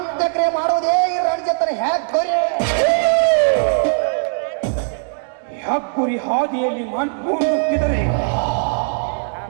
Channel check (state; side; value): silent; left; 66 dB below the other